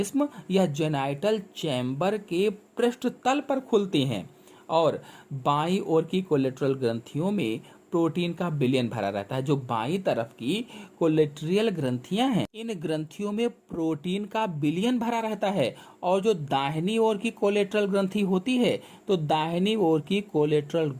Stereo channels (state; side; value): identical; both; correlation 1.00